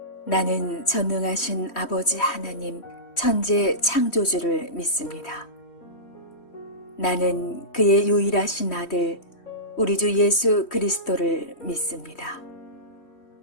나는 전능하신 아버지 하나님 천재 창조주를 믿습니다. 나는 그의 유일하신 아들 우리 주 예수 그리스도를 믿습니다.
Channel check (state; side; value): late; right; 3.1 ms